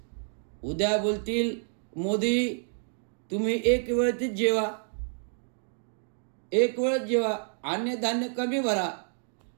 उद्या बोलतील मोदी तुम्ही एक वेळेच जेवा, 1 वेळच जेवा, अन्नधान्य कमी भरा,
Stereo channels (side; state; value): left; silent; digital silence